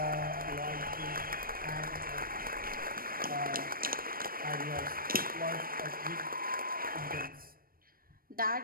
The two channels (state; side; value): late; left; 0.42 ms